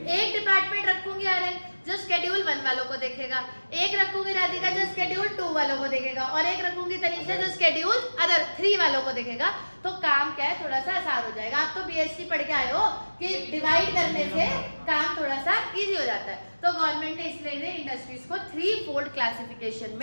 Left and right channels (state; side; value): inverted; both; correlation -1.00